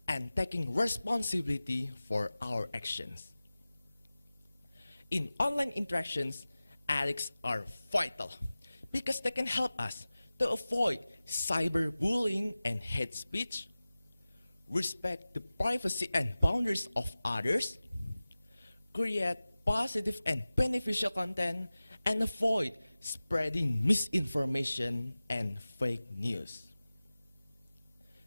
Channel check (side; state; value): both; inverted; correlation -0.97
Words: and taking responsibility for our actions. In online interactions, ethics are vital because they can help us to avoid cyberbullying and hate speech, respect the privacy and boundaries of others, create positive and beneficial content, and avoid spreading misinformation and fake news.